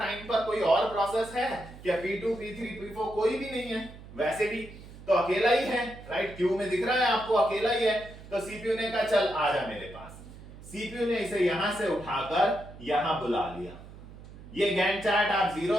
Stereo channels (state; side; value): noise; right; hum, 17 dB below the sound